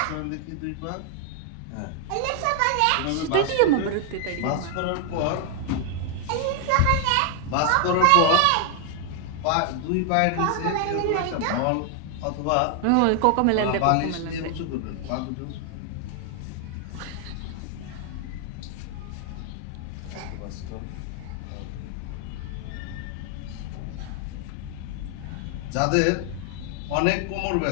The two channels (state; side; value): different; both; correlation 0.00